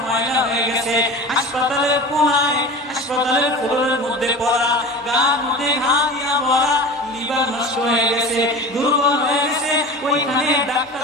ময়লা হয়ে গেছে, হাসপাতালের কোণায় হাসপাতালের ফ্লোরের মধ্যে পড়া, গার মধ্যে ঘা দিয়া ভরা, লিভার নষ্ট হয়ে গেছে, দুর্বল হয়ে গেছে, ওইখানে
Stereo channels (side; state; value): both; normal; correlation 0.33